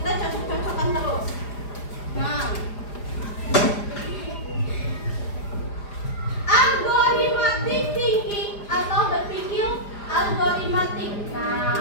cocok-cocokkan terus. Nah, algoritmatic thinking atau berpikir algoritmatik.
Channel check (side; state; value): right; late; 4.9 ms